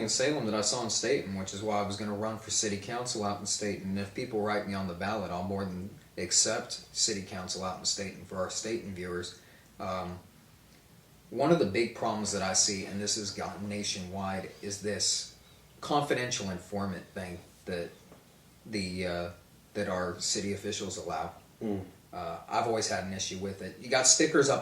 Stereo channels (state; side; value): identical; both; correlation 1.00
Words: in Salem that I saw in Staten, which is why I was going to run for city council out in Staten. And if people write me on the ballot, I'll more than accept city council out in Staten for our Staten viewers. One of the big problems that I see, and this has gotten nationwide, is this confidential informant thing that that our city officials allow. I've always had an issue with it. You got stickers